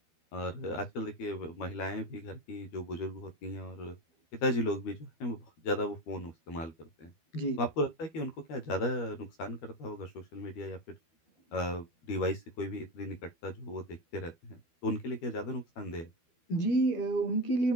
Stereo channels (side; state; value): right; late; 12 ms